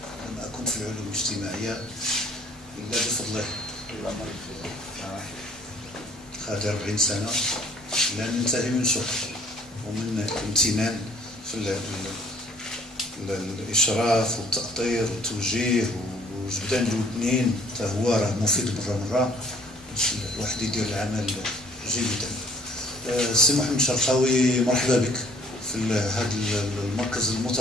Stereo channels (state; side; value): normal; both; correlation 0.57